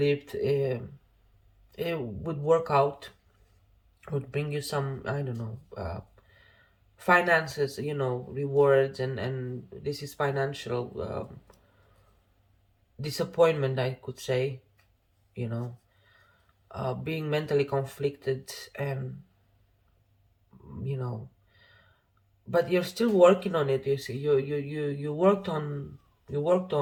it would work out, would bring you some, I don't know, finances, rewards, and this is financial disappointment, I could say, you know, being mentally conflicted, and you know, but you're still working on it. You see, you worked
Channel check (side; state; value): both; identical; correlation 1.00